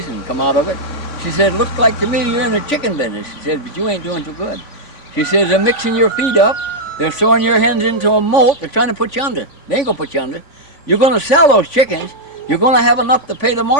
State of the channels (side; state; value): right; late; 3.5 ms